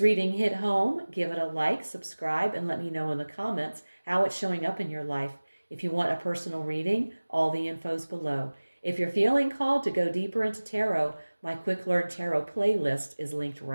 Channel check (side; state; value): both; inverted; correlation -1.00